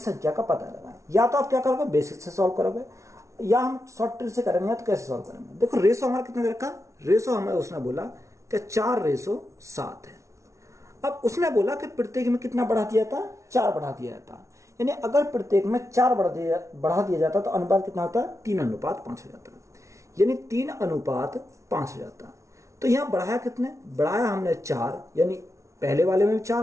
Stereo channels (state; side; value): late; left; 0.14 ms